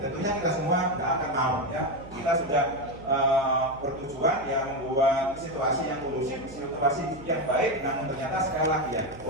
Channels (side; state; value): right; noise; hum, 18 dB below the sound